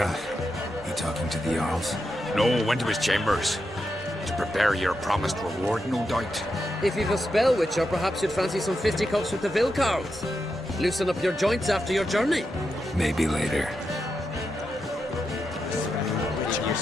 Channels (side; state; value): both; normal; correlation 0.86